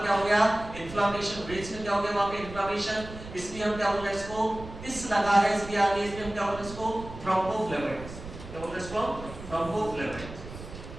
क्या हो गया? इन्फ्लेमेशन। ब्रेस्ट में क्या हो गया? वहां पे इन्फ्लेमेशन। इसलिए हम क्या बोल रहे हैं इसको? इस लगा है इसलिए आगे, इसलिए हम क्या बोल रहे हैं इसको? थ्रोम्बोफ्लेबाइटिस। क्या बोल रहे हैं इसको? थ्रोम्बोफ्लेबाइटिस।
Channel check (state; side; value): noise; right; rumble, 13 dB below the sound